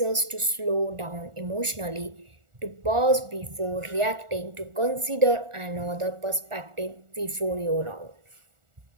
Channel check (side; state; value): left; late; 1.4 ms